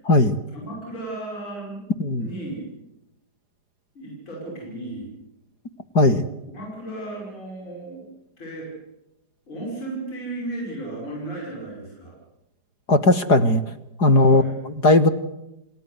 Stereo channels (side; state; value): right; late; 4.9 ms